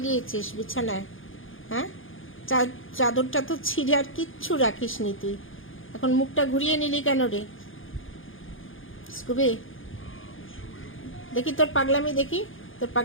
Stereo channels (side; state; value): right; late; 0.58 ms